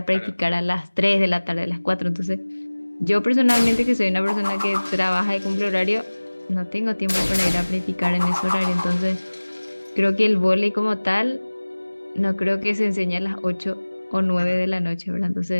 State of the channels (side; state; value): both; inverted; correlation -1.00